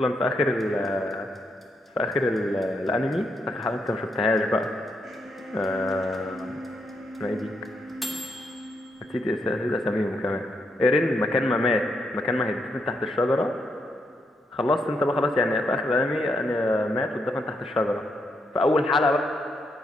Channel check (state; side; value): normal; both; correlation 0.79